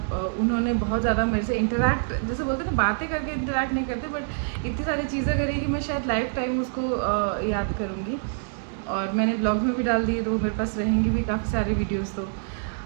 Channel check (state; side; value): silent; left; digital silence